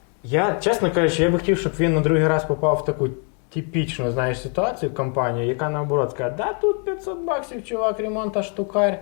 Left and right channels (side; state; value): right; quieter; 39.9 dB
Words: я, чесно кажучи, я би хотів, щоб він на другий раз попав в таку типічну, знаєш, ситуацію, компанію, яка наоборот каже, да тут $500, чувак, ремонта штукарь.